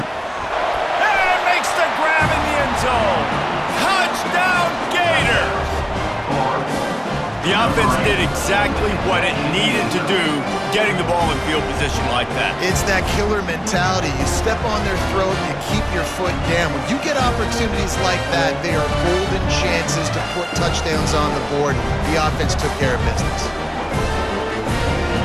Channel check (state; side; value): identical; both; correlation 1.00